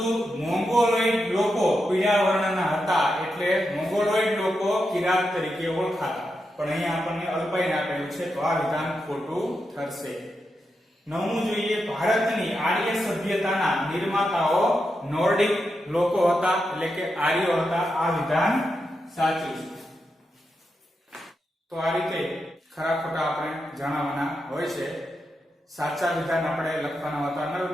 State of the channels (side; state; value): both; normal; correlation 0.86